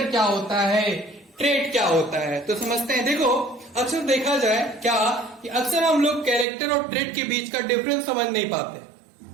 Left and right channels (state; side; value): drops out; left; at 6.5 s